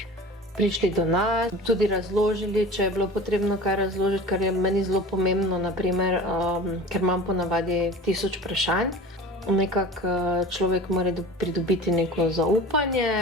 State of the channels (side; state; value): both; normal; correlation 0.38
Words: prišli do nas, tudi razložili, če je bilo potrebno kaj razložiti, kar je meni zelo pomembno, naprimer, ker imam ponavadi 1000 vprašanj. Nekako človek mora pridobiti neko